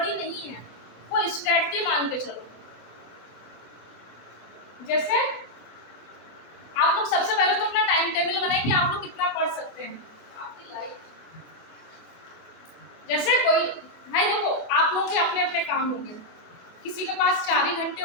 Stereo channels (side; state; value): right; late; 24 ms